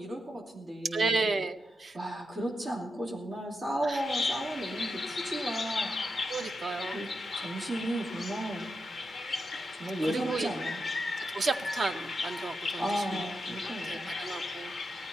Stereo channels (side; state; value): both; normal; correlation 0.86